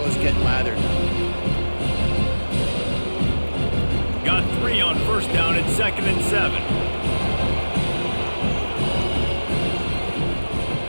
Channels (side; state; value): both; inverted; correlation -1.00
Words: get lathered. Got 3 on first down at 2nd and 7.